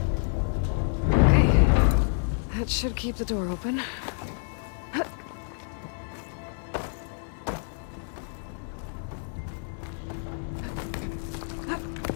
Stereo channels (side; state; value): right; silent; 59 dB below the other